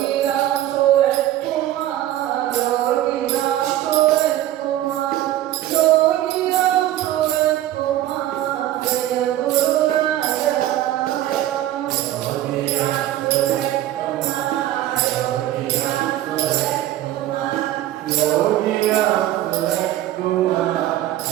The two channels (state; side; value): quieter; left; 13.7 dB